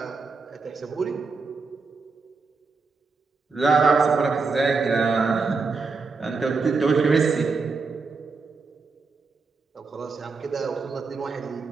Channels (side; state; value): left; quieter; 4.4 dB